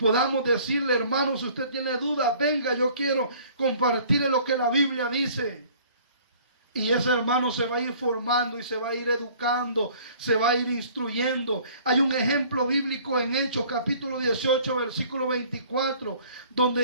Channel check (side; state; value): both; inverted; correlation -0.53